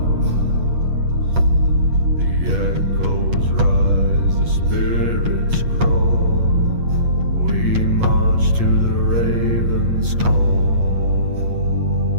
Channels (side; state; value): left; late; 8.3 ms